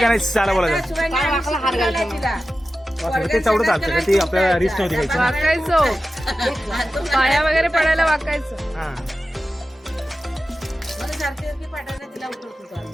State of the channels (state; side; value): normal; both; correlation 0.93